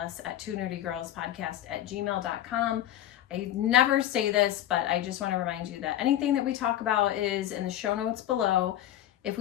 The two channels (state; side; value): quieter; right; 12.5 dB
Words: at twonerdygirlspodcast@gmail.com. I never say this, but I just want to remind you that anything that we talk about is in the show notes below. If